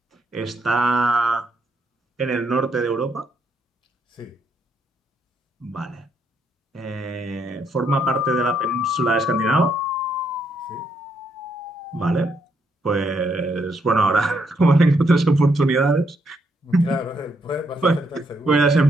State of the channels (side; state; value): both; normal; correlation 0.75